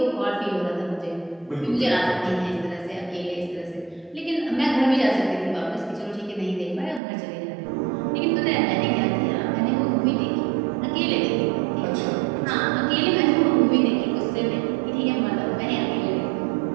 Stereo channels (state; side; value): drops out; left; at 7.0 s